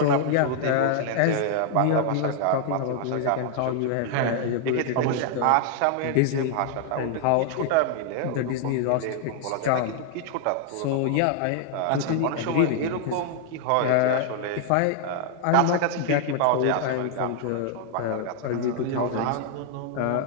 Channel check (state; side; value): different; both; correlation 0.00